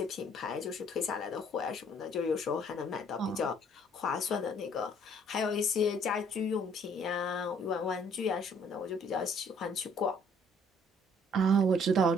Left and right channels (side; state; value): both; normal; correlation 0.61